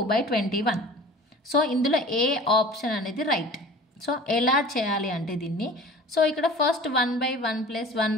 సో ఇందులో ఏ ఆప్షన్ అనేది రైట్. సో ఎలా చేయాలి అంటే దీన్ని, సో ఇక్కడ ఫస్ట్ 1/1 +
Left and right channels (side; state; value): both; normal; correlation 0.42